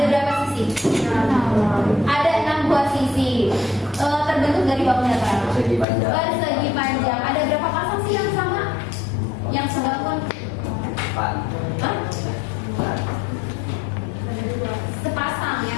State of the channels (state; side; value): drops out; right; at 5.9 s